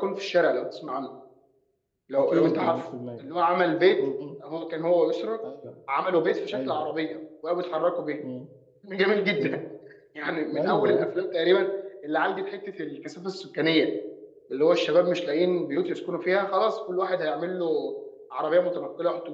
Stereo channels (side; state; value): both; identical; correlation 1.00